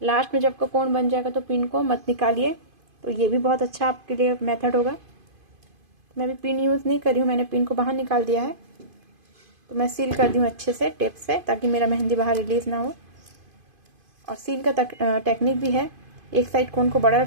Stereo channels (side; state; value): left; late; 2.5 ms